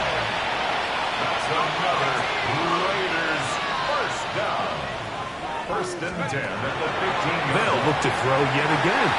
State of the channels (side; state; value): both; identical; correlation 1.00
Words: That's another Raiders first down. First and 10 at the 15. They'll look to throw yet again.